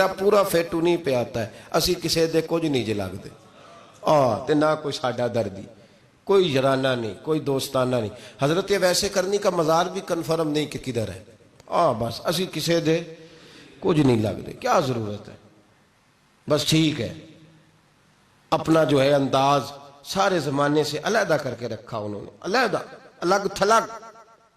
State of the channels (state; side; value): identical; both; correlation 1.00